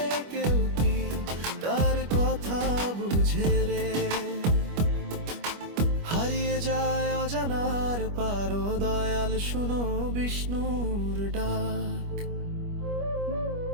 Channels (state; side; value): late; left; 25 ms